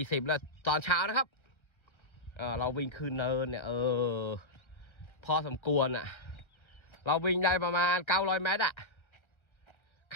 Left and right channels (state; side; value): late; right; 1.4 ms